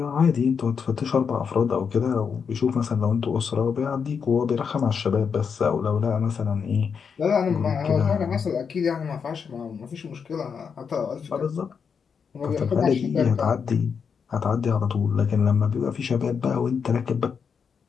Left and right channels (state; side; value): quieter; right; 6.4 dB